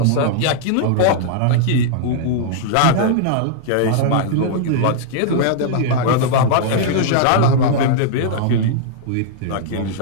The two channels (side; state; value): both; different; correlation -0.02